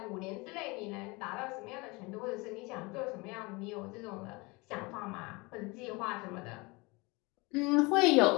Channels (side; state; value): right; quieter; 25.7 dB